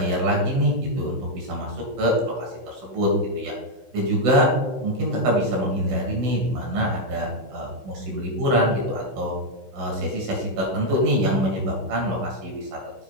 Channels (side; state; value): left; late; 16 ms